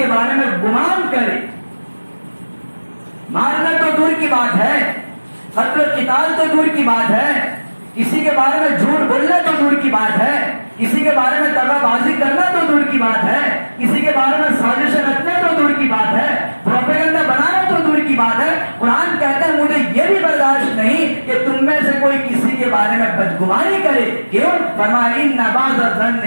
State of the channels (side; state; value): both; inverted; correlation -1.00